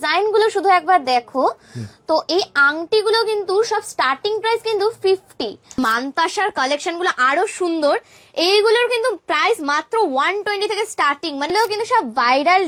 গুলো শুধু একবার দেখো। তো এই আংটিগুলো কিন্তু সব স্টার্টিং প্রাইস কিন্তু 50। মানতাসার কালেকশন গুলো আরো সুন্দর। এইগুলোর কিন্তু প্রাইস মাত্র 120 থেকে স্টার্টিং, মানে কিন্তু সব ভাইরাল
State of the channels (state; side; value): identical; both; correlation 1.00